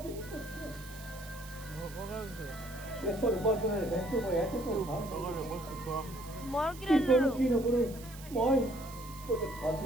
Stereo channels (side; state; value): right; noise; hiss, 17 dB below the sound